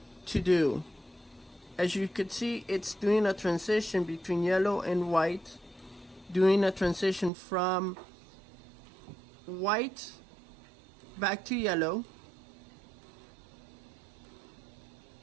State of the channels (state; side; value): drops out; left; at 7.3 s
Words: to do. As you could see, it's doing a transition between yellow and white, doing a transition from white back to yellow,